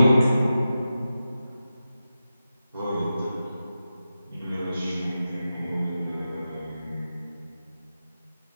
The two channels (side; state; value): both; inverted; correlation -0.92